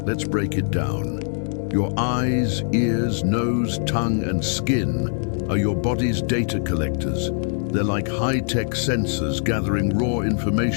Let's break it down. Your eyes, ears, nose, tongue, and skin are your body's data collectors. They're like high-tech sensors gathering raw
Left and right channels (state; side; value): silent; right; digital silence